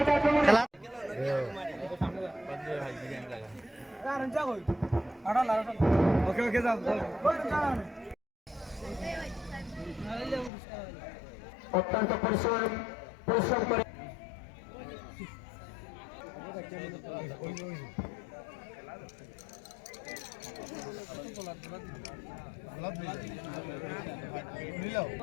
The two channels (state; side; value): drops out; right; at 10.5 s